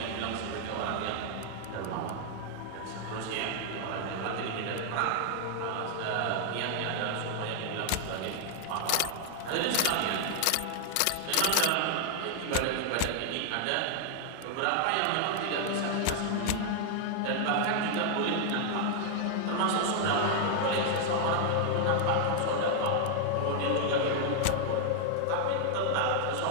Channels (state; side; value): different; both; correlation 0.00